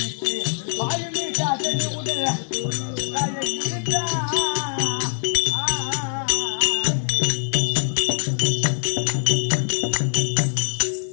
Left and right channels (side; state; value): right; silent; 57 dB below the other